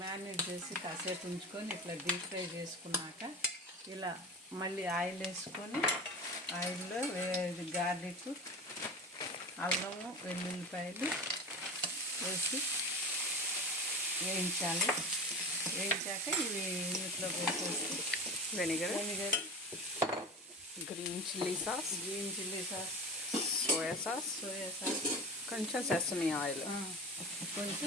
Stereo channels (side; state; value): both; normal; correlation 0.31